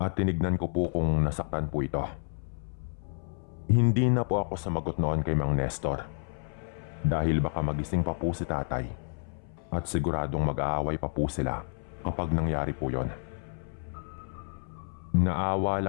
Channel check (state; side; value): silent; right; 58 dB below the other